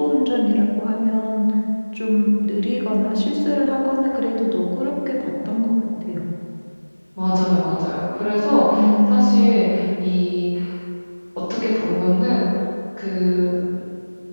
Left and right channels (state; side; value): inverted; both; correlation -1.00